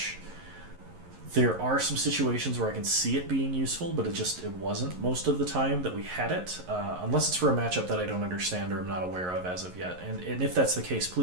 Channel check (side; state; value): left; late; 11 ms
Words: There are some situations where I can see it being useful, but it wasn't most of the time that we had it, unless it's for a matchup that I don't understand or I'm not aware of as of yet. And if that's the case,